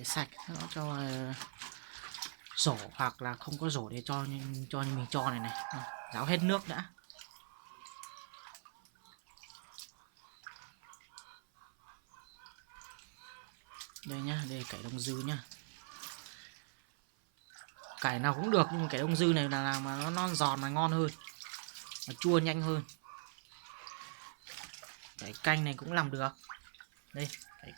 sạch nó cho rổ, hoặc là không có rổ để cho như mình cho này này. Ráo hết nước đã. Đây nhá, đây cải đông dư nhá. Cải nào cũng được nhưng mà cải đông dư này là làm mà nó non giòn mà ngon hơn, nó chua nhanh hơn. Cải canh này cũng làm được. Đây cải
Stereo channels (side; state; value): left; silent; 51 dB below the other